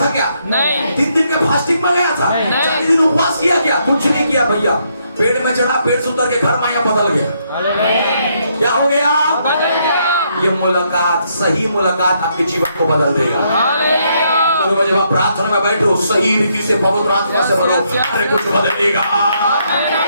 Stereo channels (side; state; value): both; inverted; correlation -0.75